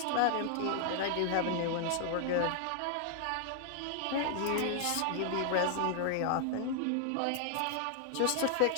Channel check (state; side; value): different; both; correlation 0.00